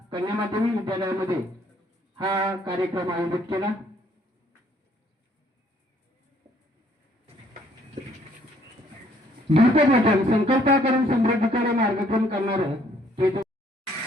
कन्या माध्यमिक विद्यालयामध्ये हा कार्यक्रम आयोजित केला. दीपवचन संकल्प करून समृद्धीकडे मार्गक्रम करणार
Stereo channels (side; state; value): both; normal; correlation 0.64